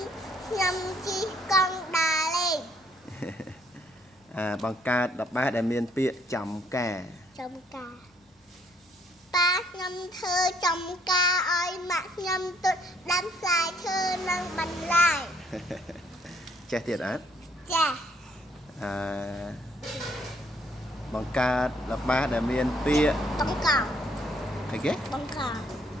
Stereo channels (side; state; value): both; normal; correlation 0.66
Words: ញុំជិះកង់ដើរលេងបង្កើតល្បែងដែលមានពាក្យចំការប៉ាខ្ញុំធ្វើចំការឲ្យម៉ាក់ខ្ញុំទុតដាំផ្លែឈើនិងបន្លែ ចេះទៀតអត់ចាបង្កើតល្បែងដែលមានពាក្យបង្កងអីគេបង្